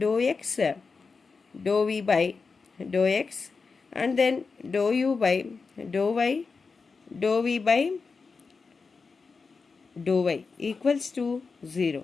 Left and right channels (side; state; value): right; quieter; 4.7 dB